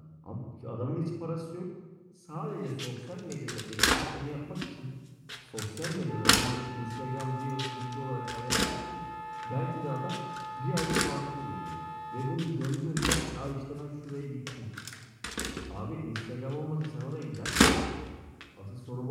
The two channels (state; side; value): identical; both; correlation 1.00